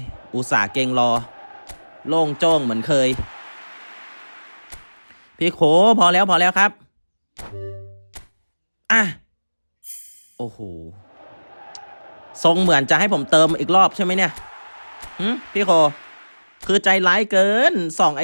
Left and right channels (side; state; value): both; inverted; correlation -1.00